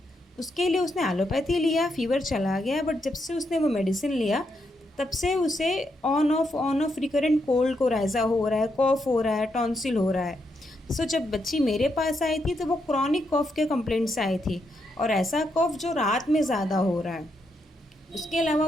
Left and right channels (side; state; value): both; normal; correlation 0.80